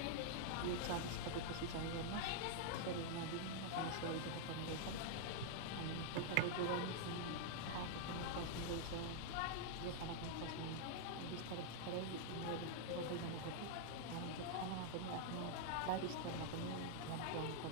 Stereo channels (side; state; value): both; different; correlation -0.01